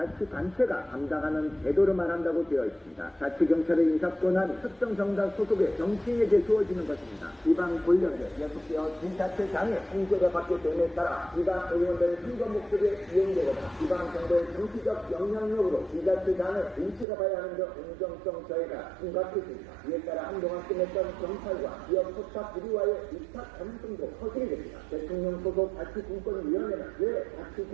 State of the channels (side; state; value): left; drops out; at 17.1 s